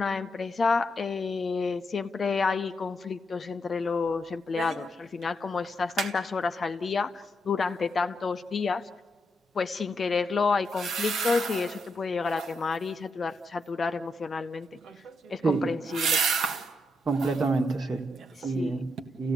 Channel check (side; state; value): both; normal; correlation 0.82